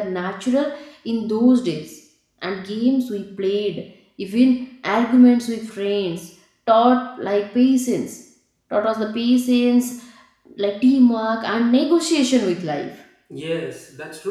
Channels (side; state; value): both; identical; correlation 1.00